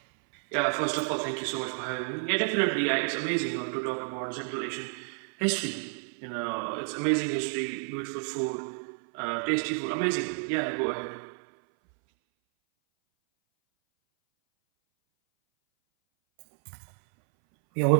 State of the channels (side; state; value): left; silent; 58 dB below the other